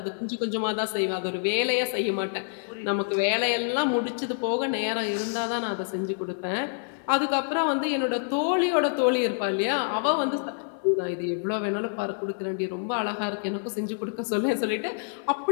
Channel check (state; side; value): silent; right; 60 dB below the other